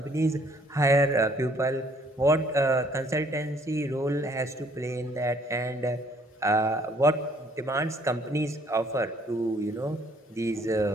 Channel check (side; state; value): both; normal; correlation 0.62